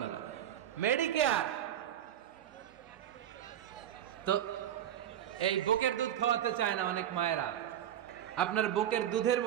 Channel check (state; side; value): quieter; left; 10.9 dB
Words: মেডিকেয়ার। তো এই বুকের দুধ খাওয়াতে চায় না অনেক মায়েরা। আপনার বুকের দুধের